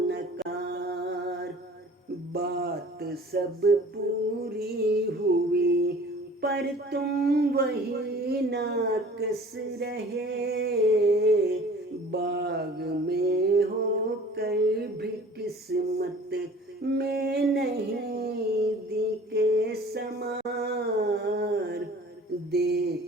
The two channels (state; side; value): normal; both; correlation 0.47